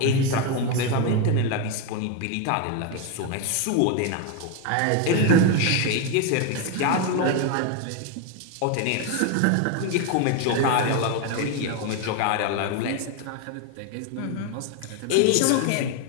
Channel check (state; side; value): different; both; correlation 0.02